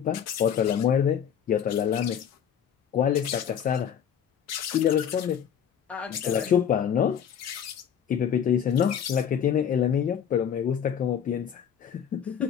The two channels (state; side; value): quieter; right; 8.4 dB